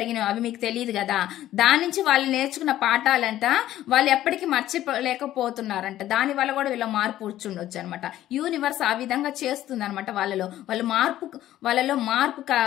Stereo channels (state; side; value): quieter; right; 13.4 dB